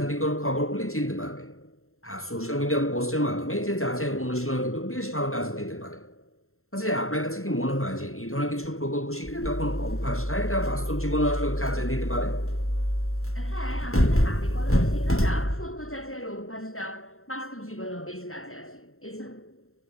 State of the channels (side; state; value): right; late; 0.62 ms